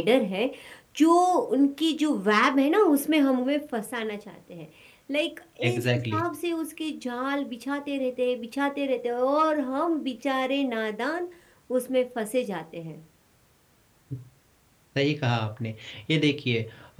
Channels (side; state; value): both; identical; correlation 1.00